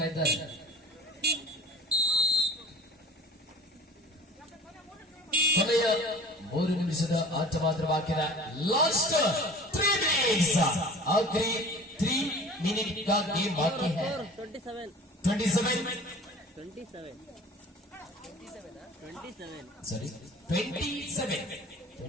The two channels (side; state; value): both; normal; correlation 0.42